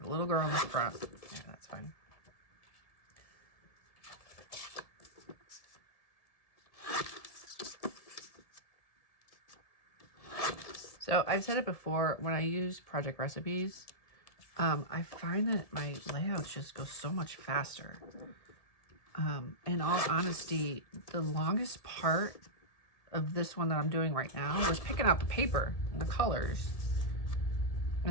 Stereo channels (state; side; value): late; right; 1.7 ms